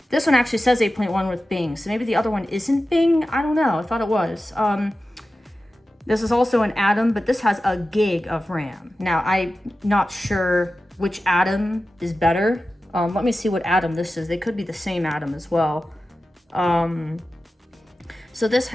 This one actually says 8.1 with Bing, so maybe the other one isn't Bing? I don't know, I thought it was. This is also an Atom, but this has a gig of RAM. Now, I'm not sure which Atom is better. Let me see what Atom this is. They could be the same Atom as well. So this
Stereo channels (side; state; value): both; normal; correlation 0.94